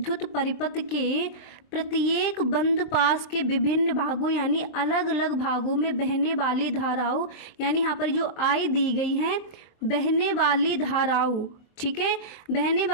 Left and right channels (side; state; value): right; late; 23 ms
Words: परिपथ के प्रत्येक बंद पास के विभिन्न भागों यानी अलग अलग भागों में बहने वाली धाराओं, यानी यहाँ पर जो आई दी गई हैं बहने वाली धाराओं, ठीक है, बहने